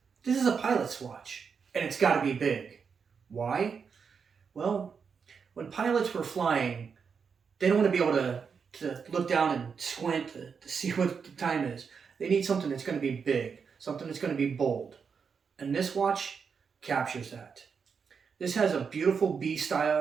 is a pilot's watch, and it's gotta be big. Why? Well, when pilots were flying, they don't want to be able to look down and squint to see what the time is. They need something that's going to be big, something that's going to be bold. And this watch captures that. This has a beautiful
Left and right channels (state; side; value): quieter; left; 6.1 dB